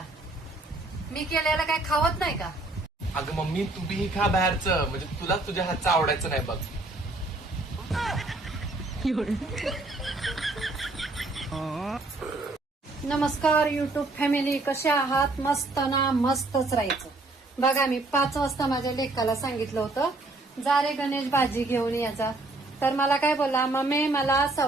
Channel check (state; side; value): quieter; left; 3.0 dB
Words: मी केलेलं काय खावत नाही का? अगं मम्मी तू बी खा बाहेरचं, म्हणजे तुला तुझ्या हातचं आवडायचं नाही बघ. नमस्कार युट्यूब फॅमिली, कसे आहात? मस्त ना? मस्तच राहायचं. बघा मी 5 वाजता माझ्या लेकाला सांगितलं होतं जा रे गणेश भाजी घेऊन यायचा. तर मला काय बोलला, मम्मी मला